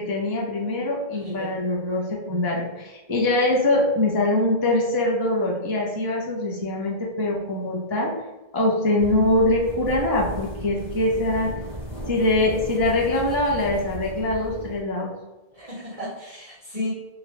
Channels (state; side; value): late; left; 1.7 ms